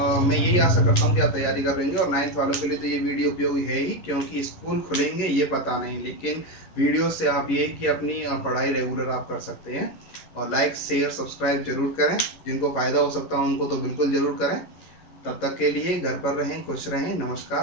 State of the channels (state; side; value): late; right; 11 ms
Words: मैं यही आशा करता हूँ कि आप तैयारी कर लेंगे। और 9th वालों के लिए तो ये वीडियो उपयोगी है ही, क्योंकि स्कूल खुलेंगे ये पता नहीं, लेकिन वीडियो से आप ये कि अपनी पढ़ाई रेगुलर आप कर सकते हैं। और लाइक शेयर सब्सक्राइब जरूर करें, जिनको फ़ायदा हो सकता है उनको तो बिल्कुल ज़रूर करें। तब तक के लिए घर पर रहें, खुश रहें।